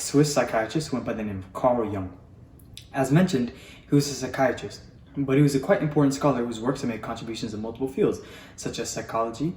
psychiatrist who went by the name of Carl Jung. As mentioned, he was a psychiatrist, but he was a quite important scholar whose works have made contributions in multiple fields, such as psychology,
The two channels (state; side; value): identical; both; correlation 1.00